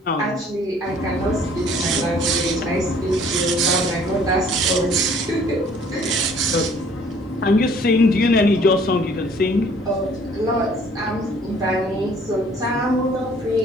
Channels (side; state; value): both; normal; correlation 0.56